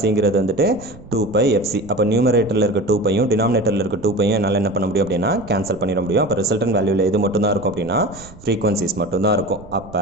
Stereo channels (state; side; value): noise; right; rumble, 20 dB below the sound